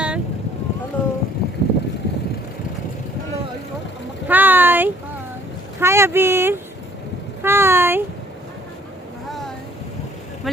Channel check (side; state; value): both; normal; correlation 0.59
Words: হ্যালো হ্যালো हाय হাই हाय अबीर हाय হাই